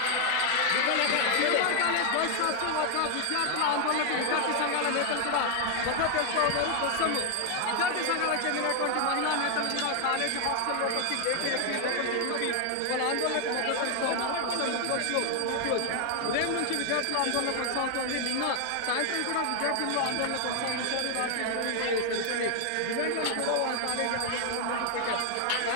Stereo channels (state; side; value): different; both; correlation 0.00